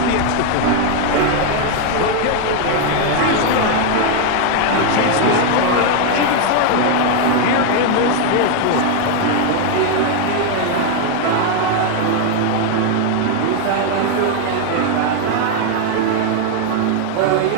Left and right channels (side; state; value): both; different; correlation 0.01